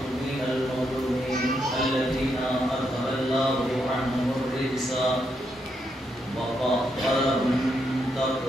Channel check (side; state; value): both; normal; correlation 0.80